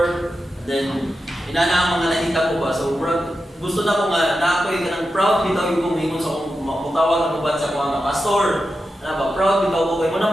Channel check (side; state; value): both; normal; correlation 0.90